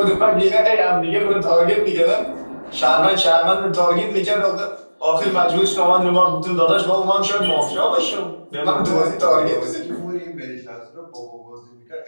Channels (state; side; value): inverted; both; correlation -1.00